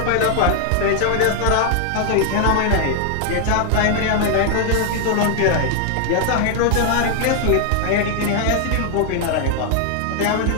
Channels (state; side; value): different; both; correlation 0.00